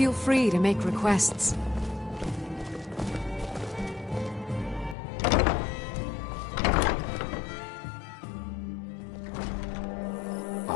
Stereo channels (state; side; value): drops out; right; at 5.0 s